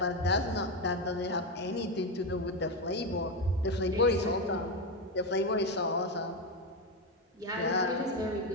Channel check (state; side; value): normal; both; correlation 0.12